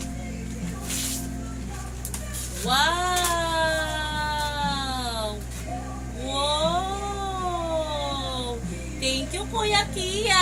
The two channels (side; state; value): both; identical; correlation 1.00